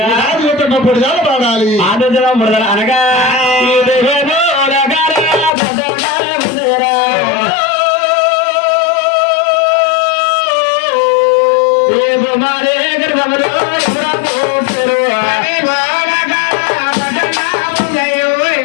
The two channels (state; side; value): drops out; right; at 5.5 s